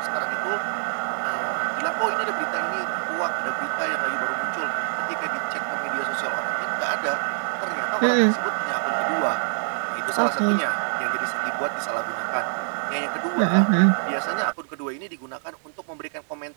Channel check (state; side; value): silent; left; digital silence